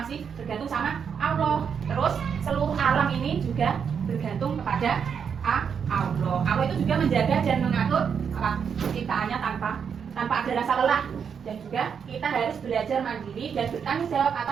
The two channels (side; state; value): left; quieter; 7.0 dB